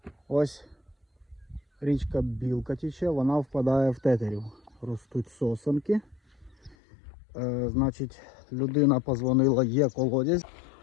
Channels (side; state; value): right; drops out; at 6.8 s